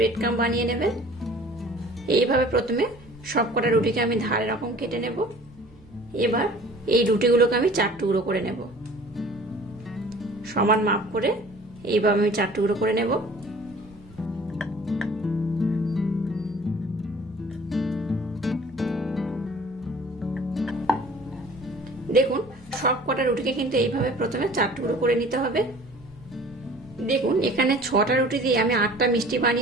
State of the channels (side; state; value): right; noise; hum, 27 dB below the sound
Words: ক্রাম্ব বানিয়ে নেবেন। এইভাবে প্রথমে সবকটা রুটিকে আমি ধারে রকম কেটে নেব। এবার এই রুটিগুলোকে আমি 4 টুকরো করে নেব, সমান মাপ করে এইভাবে আমি 4 টুকরো করে নেব। দেখুন সব কটা রুটিকে কিন্তু এইভাবে প্রথমে 4 টুকরো করে নিতে হবে। দেখুন এখানে 6টা রুটি দিয়ে আমি 8টা মিষ্টি